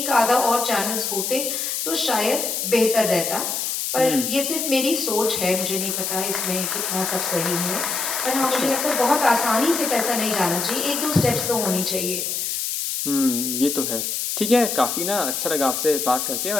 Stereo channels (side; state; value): left; noise; hiss, 2 dB below the sound